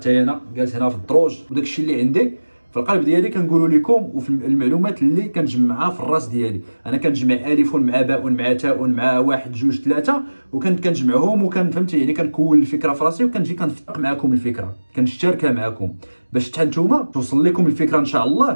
انا جالس هنا في الدروج، وداك الشيء اللي عندي في القلب ديالي كنقولوا لكم، وفي المعلومات اللي كنجمعها في الراس ديالي. انا كنجمع الف مع باء مع تاء مع واحد جوج ثلاثه، كنجمعهم فهمتي، يعني كنكون الفكره في راسي وكنجي كنفتق معكم الفكره، كنشتركها معكم باش حتى نتوما توصل لكم الفكره ان شاء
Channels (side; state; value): both; inverted; correlation -1.00